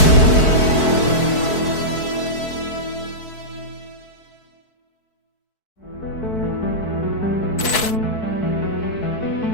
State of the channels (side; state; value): right; late; 4.6 ms